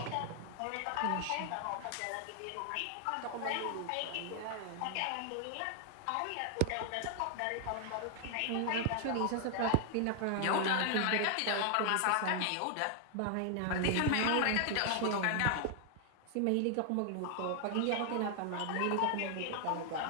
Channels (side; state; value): both; different; correlation 0.00